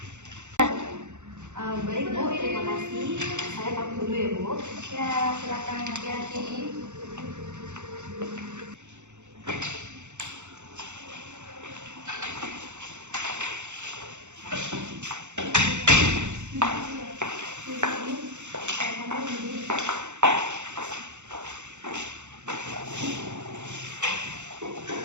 Baik Bu, terima kasih. Saya pamit dulu ya Bu. Ya, silakan hati-hati.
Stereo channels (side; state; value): left; late; 0.84 ms